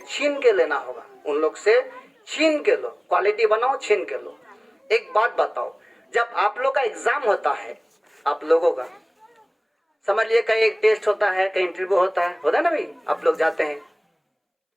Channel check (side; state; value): both; identical; correlation 1.00